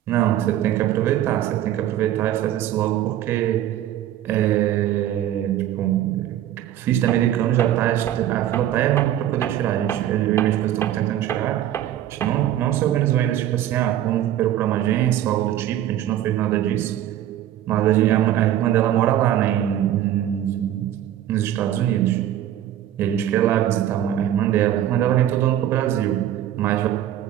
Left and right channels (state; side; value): quieter; left; 12.0 dB